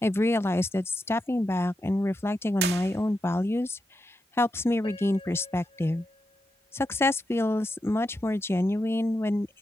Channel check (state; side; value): normal; both; correlation 0.87